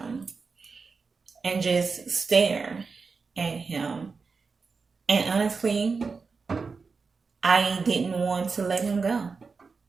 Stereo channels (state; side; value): quieter; left; 4.7 dB